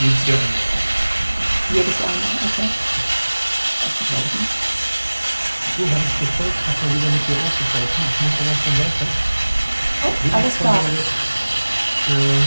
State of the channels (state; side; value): inverted; both; correlation -1.00